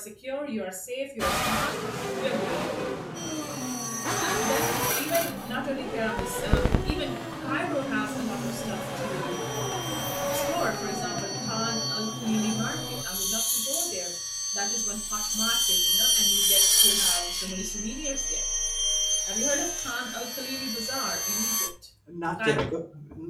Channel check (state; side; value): identical; both; correlation 1.00